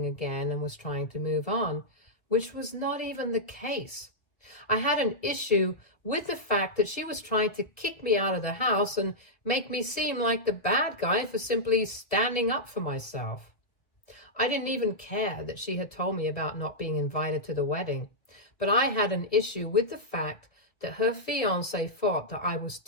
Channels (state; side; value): late; right; 1.9 ms